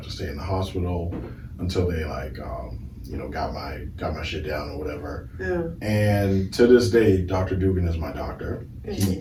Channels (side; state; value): both; identical; correlation 1.00